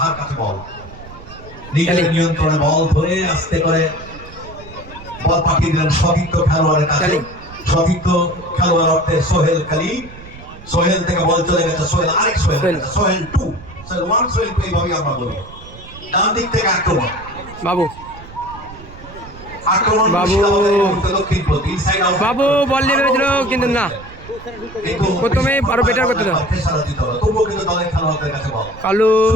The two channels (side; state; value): right; noise; rumble, 17 dB below the sound